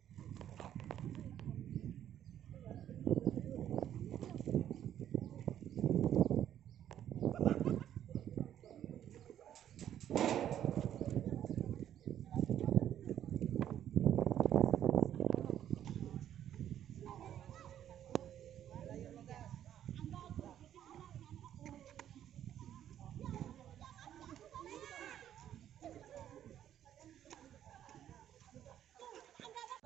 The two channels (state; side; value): quieter; left; 10.7 dB